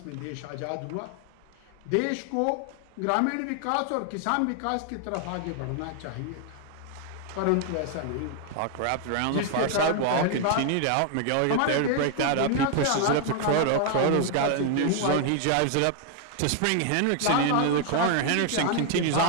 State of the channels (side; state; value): both; different; correlation 0.00